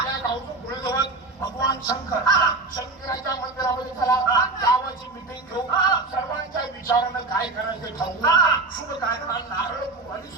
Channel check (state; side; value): quieter; left; 3.3 dB